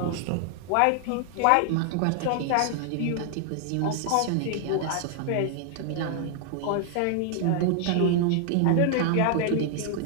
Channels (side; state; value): both; different; correlation 0.00